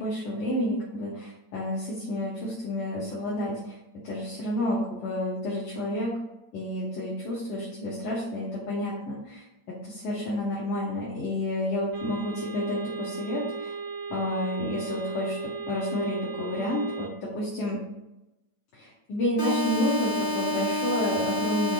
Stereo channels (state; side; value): late; right; 8.9 ms